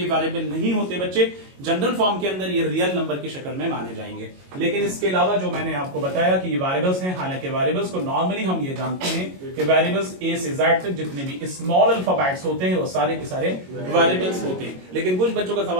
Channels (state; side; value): late; left; 22 ms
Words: वेरिएबल नहीं होते बच्चे। जनरल फॉर्म के अंदर ये रियल नंबर की शक्ल में माने जाएंगे। लेकिन इसके अलावा जो मैंने आपको बताया कि ये वेरिएबल्स हैं, हालांकि वेरिएबल्स को नॉर्मली हम ये जानते हैं कि वेरिएबल्स a से z तक जितने भी स्मॉल अल्फाबेट्स होते हैं वो सारे के सारे वेरिएबल्स होते हैं। लेकिन कुछ बच्चों का